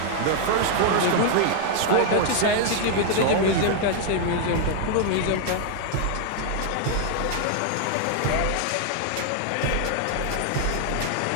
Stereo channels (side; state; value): both; different; correlation 0.00